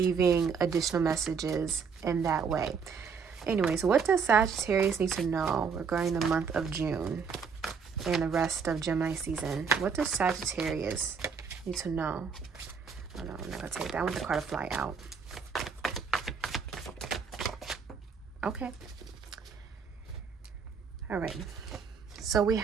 additional messages in that way. Anyways, what does Sagittarius need to know regarding the month of June and the rest of Gemini season? What does Sagittarius need to know? Oh no, I'm not gonna take that. I want the card to fly out. Okay. All right. So we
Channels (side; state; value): left; quieter; 5.9 dB